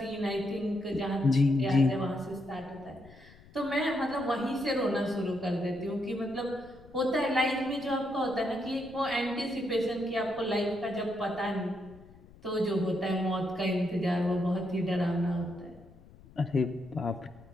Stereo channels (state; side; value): noise; left; rumble, 23 dB below the sound